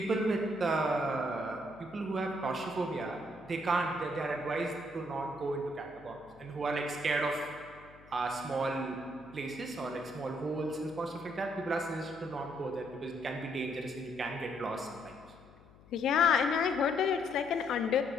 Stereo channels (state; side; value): noise; left; hum, 23 dB below the sound